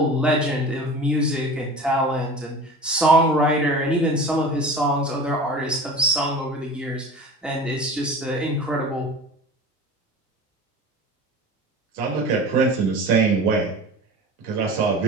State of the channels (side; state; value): both; normal; correlation 0.36